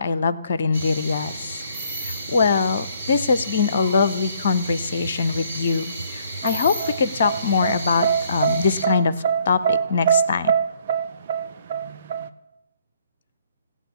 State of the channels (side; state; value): both; inverted; correlation -0.66